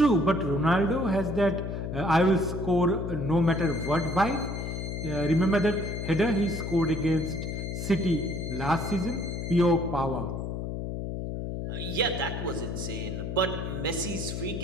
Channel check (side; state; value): left; noise; hum, 4 dB below the sound